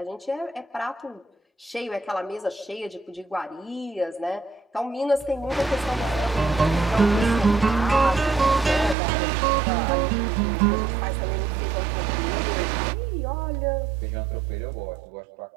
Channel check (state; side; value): drops out; left; at 9.0 s